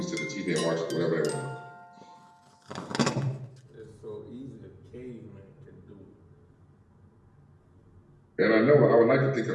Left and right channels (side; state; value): both; identical; correlation 1.00